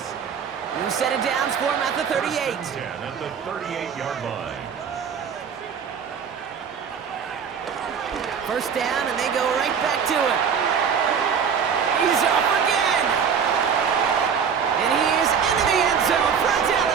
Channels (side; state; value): left; quieter; 6.9 dB